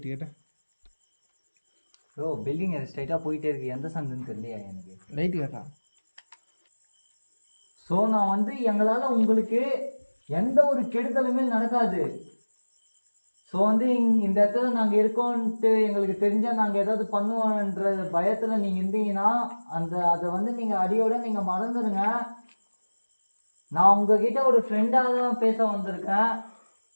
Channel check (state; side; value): inverted; both; correlation -1.00